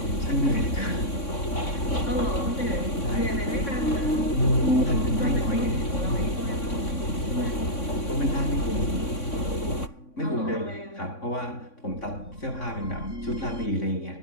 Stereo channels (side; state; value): right; late; 3.6 ms